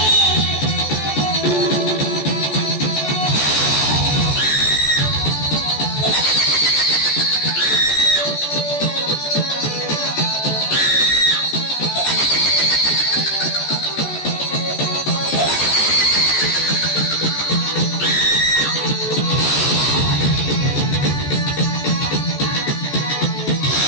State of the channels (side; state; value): right; late; 14 ms